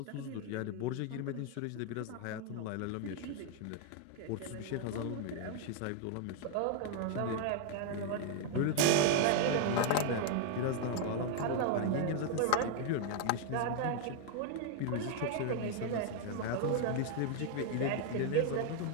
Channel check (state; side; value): different; both; correlation 0.00